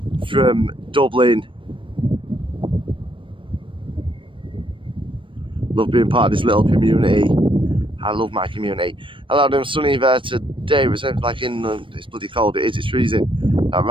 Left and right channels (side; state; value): left; late; 0.25 ms